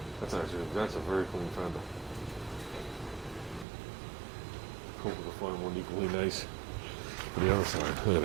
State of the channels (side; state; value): left; drops out; at 3.7 s